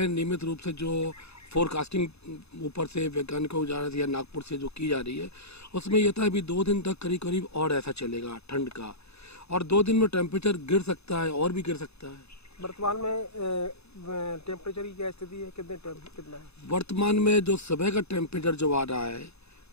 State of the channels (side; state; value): right; late; 0.79 ms